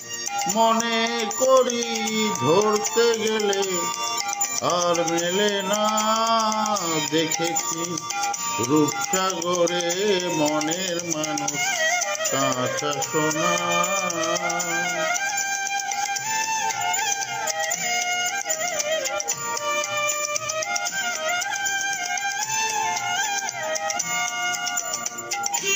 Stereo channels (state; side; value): identical; both; correlation 1.00